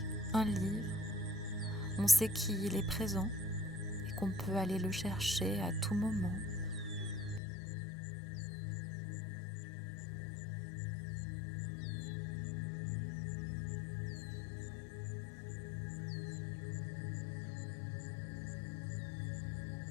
un livre. On sait qu'il est présent et qu'on peut aller le chercher à tout moment.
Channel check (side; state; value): right; drops out; at 7.4 s